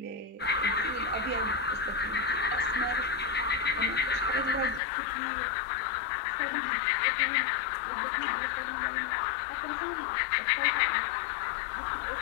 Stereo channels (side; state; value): right; drops out; at 4.8 s